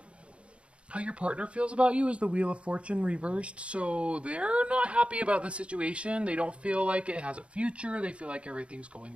how your partner feels about you is the Wheel of Fortune reversed. So they're not happy about the situation. They don't feel like it has a future. They feel like everything's going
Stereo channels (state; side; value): late; left; 0.059 ms